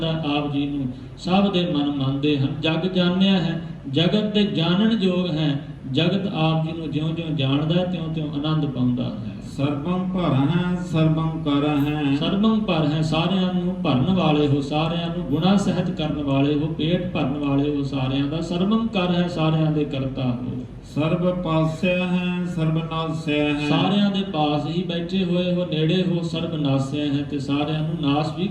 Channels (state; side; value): identical; both; correlation 1.00